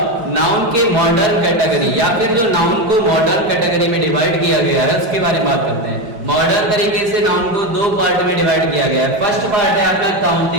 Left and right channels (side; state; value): left; late; 5.0 ms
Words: नाउन के मॉडर्न कैटेगरी या फिर जो नाउन को मॉडर्न कैटेगरी में डिवाइड किया गया है उसके बारे में बात करते हैं। मॉडर्न तरीके से नाउन को दो पार्ट में डिवाइड किया गया है। फर्स्ट पार्ट है आपका